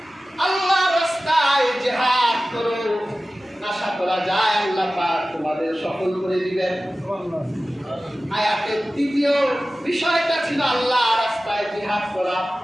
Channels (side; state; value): both; normal; correlation 0.96